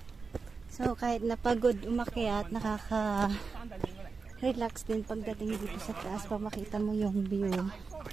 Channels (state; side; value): quieter; left; 4.7 dB